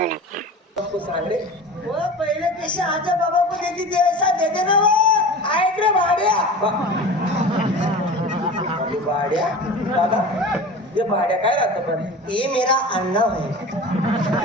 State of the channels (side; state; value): both; normal; correlation 0.35